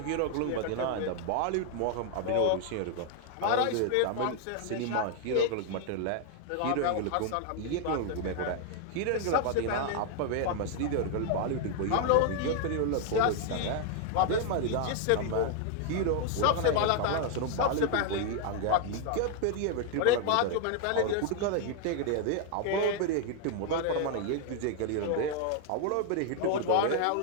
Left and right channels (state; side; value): different; both; correlation 0.00